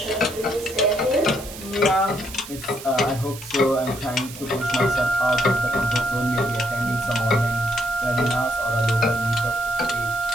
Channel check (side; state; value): right; noise; hiss, 14 dB below the sound